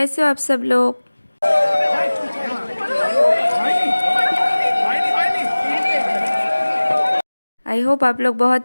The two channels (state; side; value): inverted; both; correlation -1.00